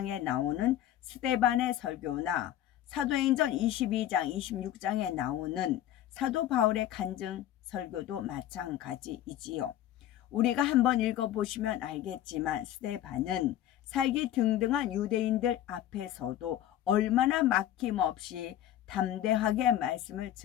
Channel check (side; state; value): right; quieter; 12.1 dB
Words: 나오는 스데반의 설교나 사도행전 22장, 26장에 나오는 사도 바울의 간증 설교도 마찬가지이지요. 우리가 한번 읽어보시면 알겠지만 스데반은 살기 등등한 유대인들 앞에서도 얼마나 막힘없이 담대하게 말씀을